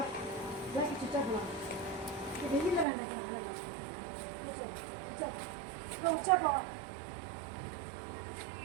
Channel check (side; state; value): left; drops out; at 2.9 s